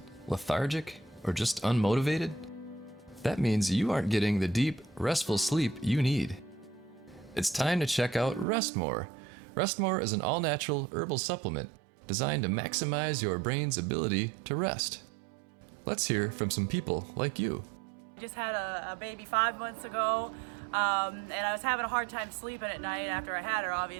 lethargic, or just unmotivated? That means you aren't getting the deep, restful sleep you need. It's time to check out Rest More. Rest More is an all-natural herbal supplement designed to maximize your brain's ability to rest. Let's hear from some people like you. I just had a baby 5 months ago, and I was having a hard time sleeping at night after I had her,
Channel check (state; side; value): drops out; left; at 8.5 s